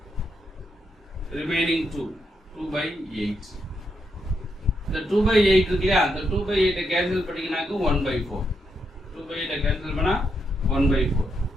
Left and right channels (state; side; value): normal; both; correlation 0.80